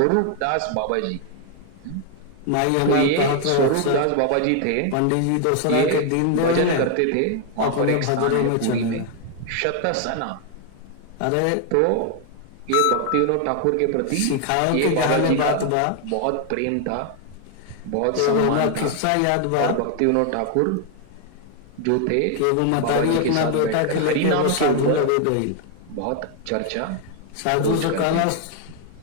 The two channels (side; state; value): both; different; correlation 0.00